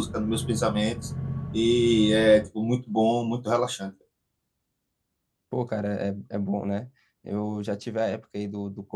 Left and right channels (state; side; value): identical; both; correlation 1.00